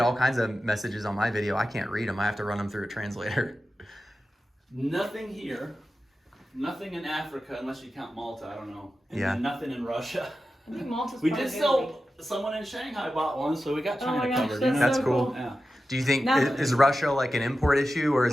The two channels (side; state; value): both; normal; correlation 0.93